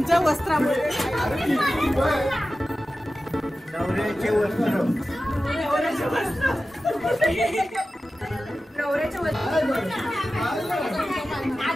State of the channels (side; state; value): both; normal; correlation 0.94